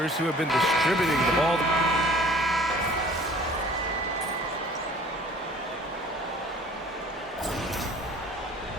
who have been distributing the ball.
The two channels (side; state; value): both; normal; correlation 0.50